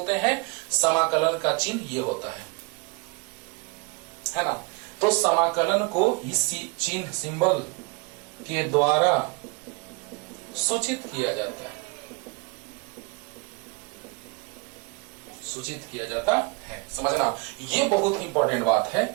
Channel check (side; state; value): left; quieter; 29.3 dB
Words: हैं। समाकलन का चिन्ह ये होता है ना। तो समाकलन को इस चिन्ह, सिंबल के द्वारा सूचित किया जाता है। सूचित किया जाता है। समझना, ये बहुत ही इंपॉर्टेंट बात है।